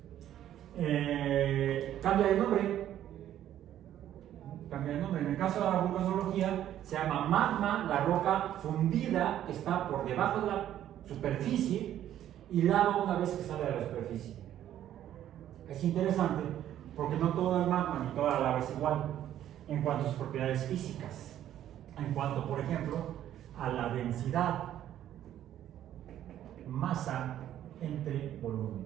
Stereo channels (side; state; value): left; quieter; 11.6 dB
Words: Cambia de nombre. En el caso de la vulcanología se llama magma, la roca fundida que está por debajo de la superficie, y lava una vez que sale de la superficie. Es interesante porque no todo el magma ni toda la lava es igual en cuanto a sus propiedades físicas, en cuanto, por ejemplo, a la densidad. masa entre volumen.